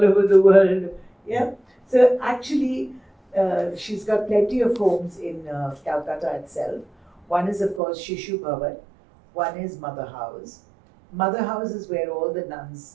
the world. Yeah. So actually, she's got plenty of homes in Calcutta itself. One is, of course, Shishu Bhavan. One is Mother House. Mother House is where all the nuns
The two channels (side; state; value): left; drops out; at 7.8 s